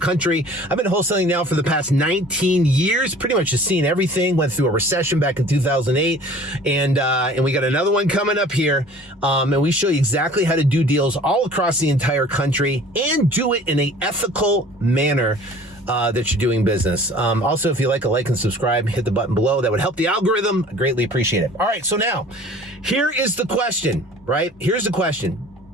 I've been wholesaling now for the past 19 years, pretty much just seen everything. Went through a recession back in 2008, and we got another one coming up here, and we show you exactly how to do deals all across the entire country and do it in an ethical manner that you're doing business. Also, if you like and subscribe, hit the button below. That would help the algorithm. I greatly appreciate it. All right, so now here is the question, right? Here's the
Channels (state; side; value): normal; both; correlation 0.48